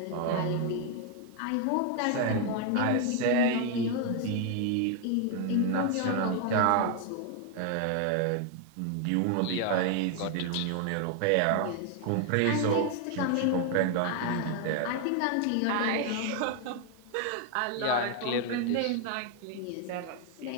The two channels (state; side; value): different; both; correlation 0.00